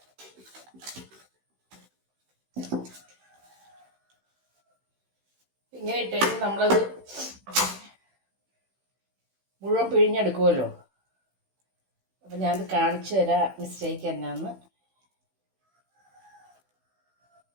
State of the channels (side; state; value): left; late; 16 ms